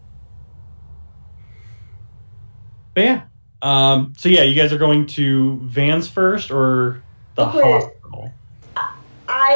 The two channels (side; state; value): both; inverted; correlation -1.00